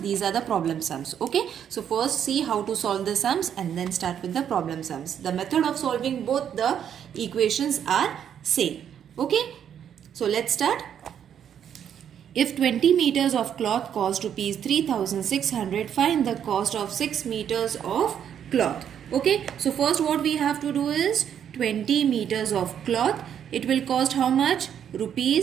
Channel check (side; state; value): left; quieter; 9.0 dB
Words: these are the problem sums. Okay, so first see how to solve the sums and then start with the problem sums. The method of solving both the equations are same. Okay, so let's start. If 20 meters of cloth cost rupees 3600, find the cost of 6 meters of cloth. Okay, so first what we have to do is 20 meters of cloth. It will cost how much?